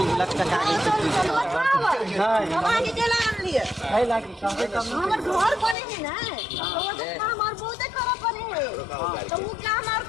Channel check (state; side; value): drops out; right; at 5.8 s